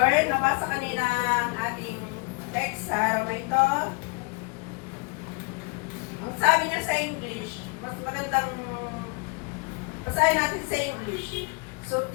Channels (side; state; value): right; quieter; 30.5 dB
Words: Nabasa kanina ang ating text sa araw na ito. Ang sabi niya sa English, mas magandang basahin natin sa English. So